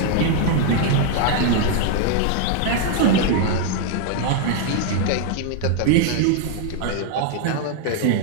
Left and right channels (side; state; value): both; different; correlation 0.00